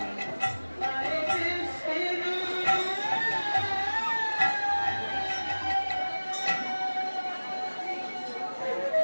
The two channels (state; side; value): inverted; both; correlation -1.00